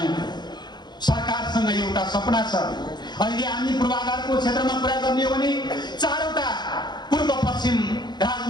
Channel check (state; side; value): late; right; 0.21 ms